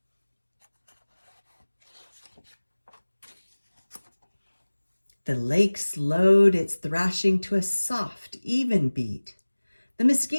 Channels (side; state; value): both; inverted; correlation -1.00